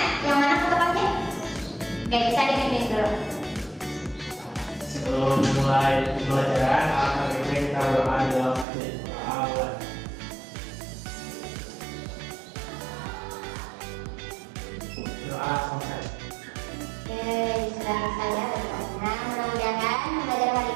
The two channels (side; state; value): left; drops out; at 8.7 s